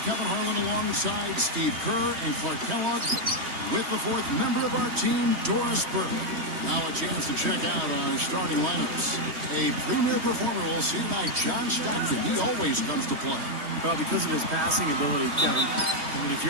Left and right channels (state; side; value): late; left; 3.1 ms